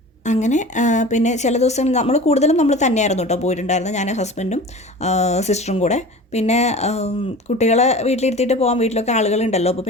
അങ്ങനെ പിന്നെ ചില ദിവസം കൂടുതലും നമ്മൾ തന്നെയായിരുന്നു കേട്ടോ പോയിട്ടുണ്ടായിരുന്നത്, ഞാൻ ഹസ്ബൻഡും സിസ്റ്ററും കൂടെ. പിന്നെ കുട്ടികളെ വീട്ടിലിരുത്തിയിട്ട് പോകാൻ വീട്ടിലൊക്കെ ആളുകളുണ്ടല്ലോ, അപ്പോൾ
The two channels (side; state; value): both; normal; correlation 0.37